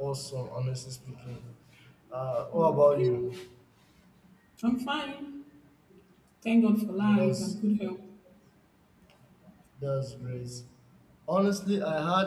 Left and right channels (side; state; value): both; identical; correlation 1.00